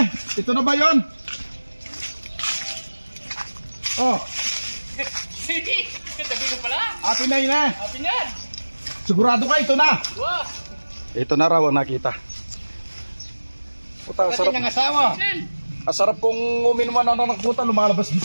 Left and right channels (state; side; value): inverted; both; correlation -1.00